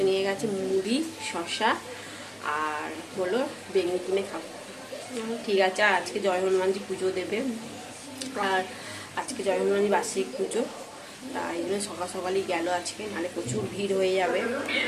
নিয়ে গেছে মুড়ি, শসা আর হলো বেগুনি কিনে খাবো। ঠিক আছে। আর আজকে জয় হনুমানজি পুজো দেবে, আর আজকে জয় হনুমানজি বার্ষিক পুজো। তাই জন্য সকাল সকালই গেল আজকে, নাহলে প্রচুর ভিড় হয়ে যাবে।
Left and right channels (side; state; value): both; identical; correlation 1.00